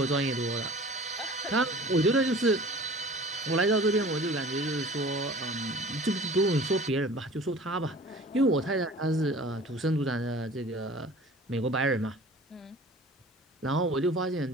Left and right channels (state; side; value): normal; both; correlation 0.44